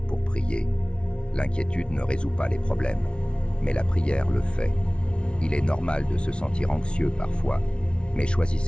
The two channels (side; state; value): right; late; 0.058 ms